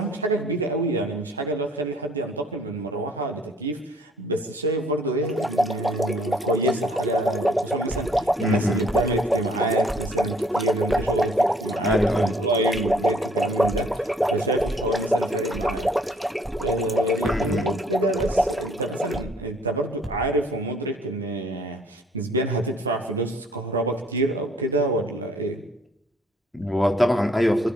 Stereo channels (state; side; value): normal; both; correlation 0.60